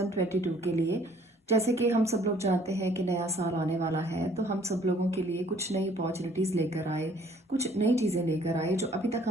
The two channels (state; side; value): normal; both; correlation 0.58